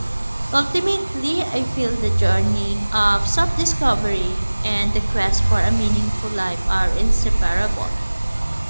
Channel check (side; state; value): both; inverted; correlation -1.00